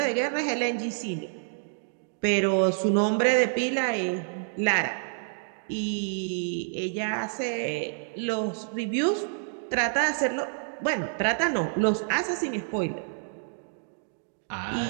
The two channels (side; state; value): left; silent; digital silence